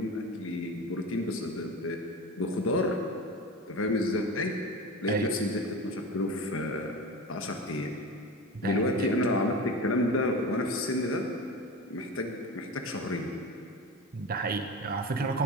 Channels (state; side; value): normal; both; correlation 0.29